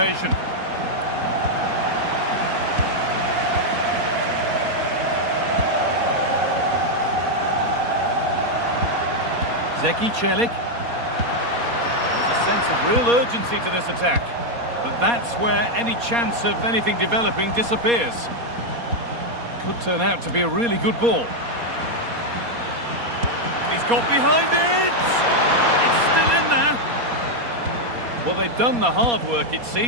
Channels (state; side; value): late; left; 4.2 ms